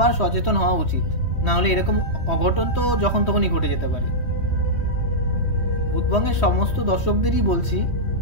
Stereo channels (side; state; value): right; late; 3.1 ms